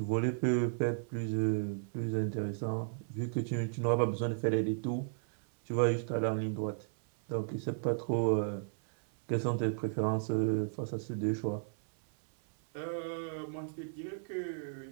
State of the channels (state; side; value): silent; left; 55 dB below the other